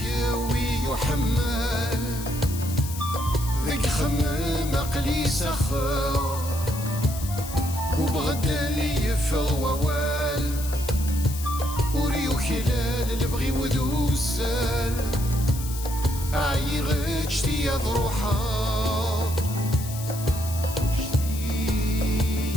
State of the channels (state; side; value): noise; left; hiss, 11 dB below the sound